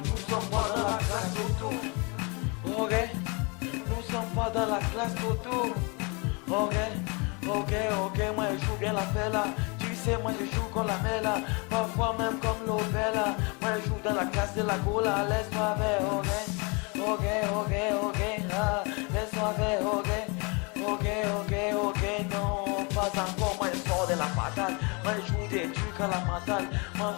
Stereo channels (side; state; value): right; quieter; 30.9 dB